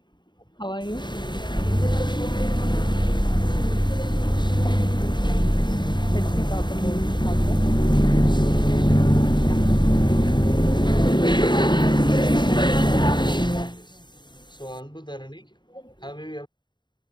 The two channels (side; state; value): right; late; 0.22 ms